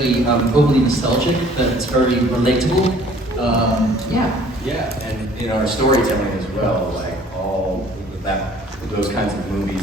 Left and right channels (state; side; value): normal; both; correlation 0.54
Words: overly nostalgic, but it's very relatable. Yeah. Yeah, and in our storytelling as well, like all those kinds of